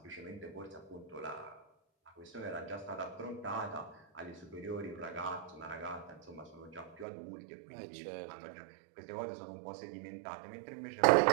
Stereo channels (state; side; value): drops out; left; at 7.1 s